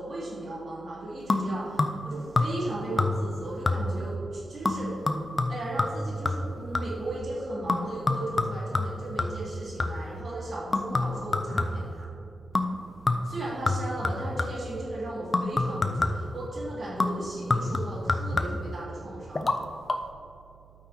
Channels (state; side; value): noise; right; hum, 23 dB below the sound